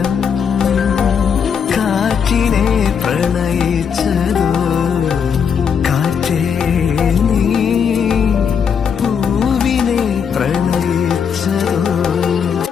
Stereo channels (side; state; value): right; quieter; 7.0 dB